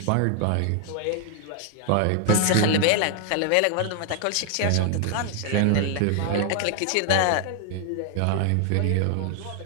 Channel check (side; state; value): both; different; correlation 0.00